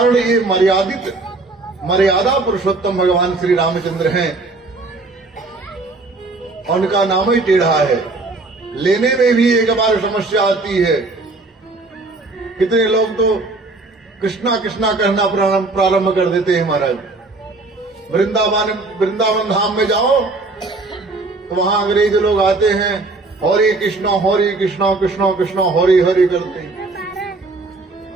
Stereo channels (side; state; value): left; quieter; 3.4 dB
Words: ये मर्यादा पुरुषोत्तम भगवान श्री रामचंद्र हैं, उनका नाम ही टेढ़ा है। लेने में भी एक बार समस्या आती है। कितने लोग तो कृष्णा कृष्णा कहना प्रारंभ कर देते हैं। महाराज वृंदावन धाम में जाओ तो वहां अंग्रेज लोग आते हैं, हरे कृष्णा कृष्णा कृष्णा हरि हरि करते हैं।